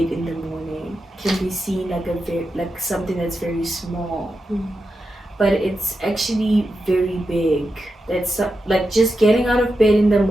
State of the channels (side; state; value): both; normal; correlation 0.89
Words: in the morning can be seen like something that's very small, but it's actually very big. That's like just getting out of bed in the